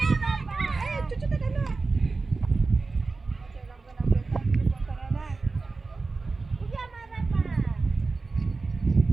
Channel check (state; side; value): quieter; left; 3.9 dB